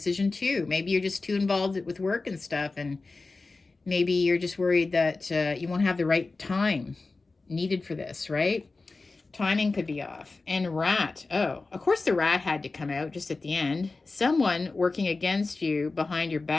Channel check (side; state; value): right; quieter; 3.7 dB